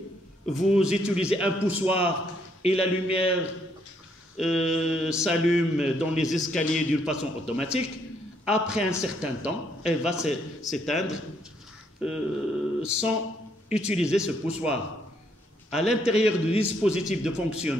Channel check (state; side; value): normal; both; correlation 0.71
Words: vous utilisez un poussoir et la lumière s'allume dans les escaliers d'une façon automatique. Après un certain temps, elle va s'éteindre sans utiliser ce poussoir. À l'intérieur du dispositif de